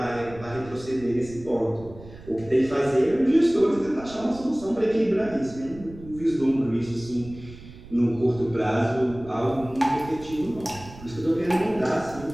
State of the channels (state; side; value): noise; right; rumble, 17 dB below the sound